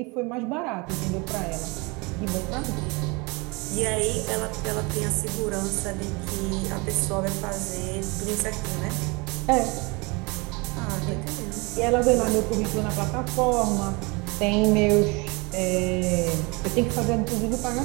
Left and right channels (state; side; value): quieter; left; 27.5 dB